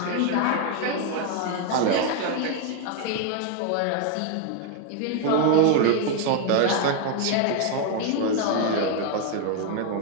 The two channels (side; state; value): both; different; correlation 0.01